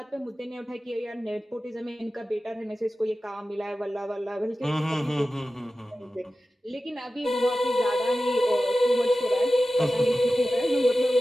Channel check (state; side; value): normal; both; correlation 0.94